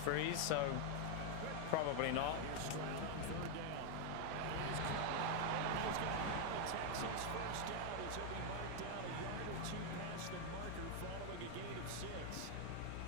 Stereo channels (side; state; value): both; different; correlation 0.01